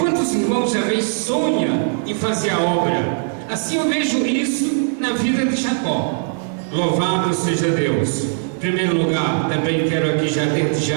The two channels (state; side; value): silent; left; 65 dB below the other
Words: irmãos já vez sonham em fazer a obra? Assim eu vejo isso na vida de Jacó. Louvado seja Deus. Em primeiro lugar, também quero aqui desde